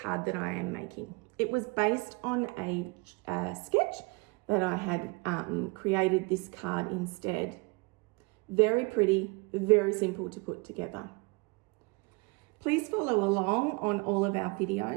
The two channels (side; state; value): left; quieter; 27.9 dB